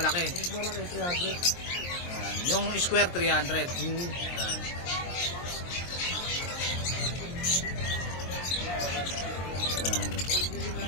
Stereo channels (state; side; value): late; right; 23 ms